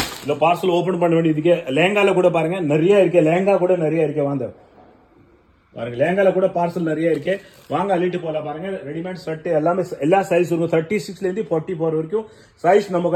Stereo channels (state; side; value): identical; both; correlation 1.00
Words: இந்த பார்சல் ஓபன் பண்ண வேண்டியதுக்கு லேங்கால கூட பாருங்க நிறைய இருக்கு. லேங்கா கூட நிறைய இருக்கு. வாங்க பாருங்க, லேங்கால கூட பார்சல் நிறைய இருக்கு. வாங்க அள்ளிட்டு போலாம் பாருங்க. ரெடிமேட் ஷர்ட் எல்லாமே எல்லா சைஸ் இருக்கும். 36ல இருந்து 44 வரைக்கும் சைஸ் நம்ம